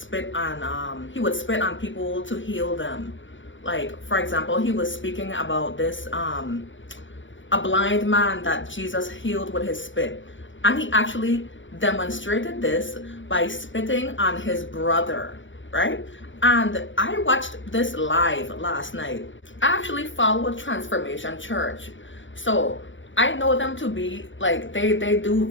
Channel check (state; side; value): late; right; 0.56 ms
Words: on, he would spit on people to heal them. Like, for example, he was speaking about this, a blind man that Jesus healed with his spit. And he actually demonstrated this by spitting on his brother, right? And I watched this live last night. I actually follow Transformation Church. So I know them to be like, they do